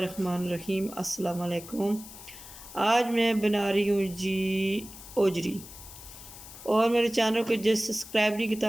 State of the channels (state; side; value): noise; left; hiss, 15 dB below the sound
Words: अस्सलाम वालेकुम। आज मैं बना रही हूँ जी ओजरी। और मेरे चैनल को जो सब्सक्राइब नहीं